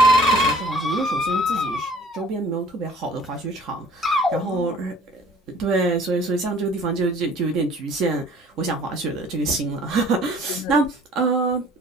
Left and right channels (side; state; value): both; normal; correlation 0.52